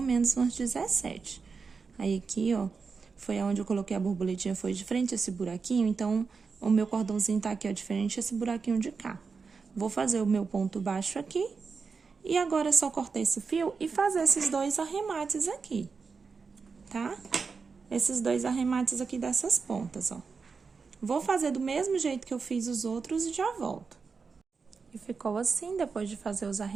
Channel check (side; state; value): left; quieter; 5.0 dB